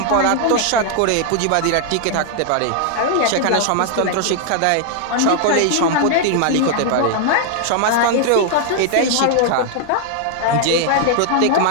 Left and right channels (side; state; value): both; different; correlation 0.00